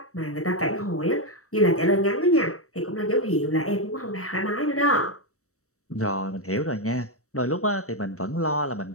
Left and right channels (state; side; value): late; right; 0.65 ms